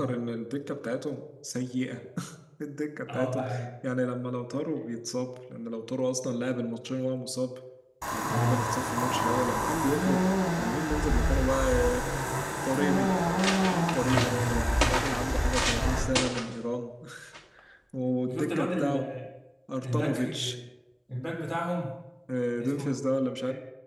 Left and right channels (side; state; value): both; identical; correlation 1.00